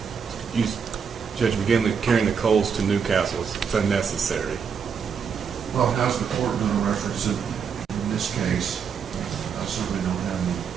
Judge McGinley carrying the coals to Newcastle, it's unnecessary. Well, how's the court going to reference it in this case? I certainly don't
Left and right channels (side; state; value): left; quieter; 6.6 dB